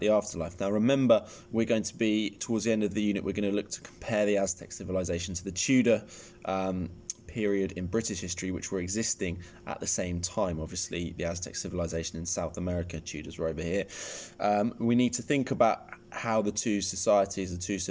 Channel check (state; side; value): identical; both; correlation 1.00